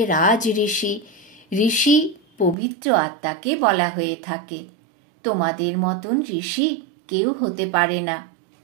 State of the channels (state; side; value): drops out; left; at 2.6 s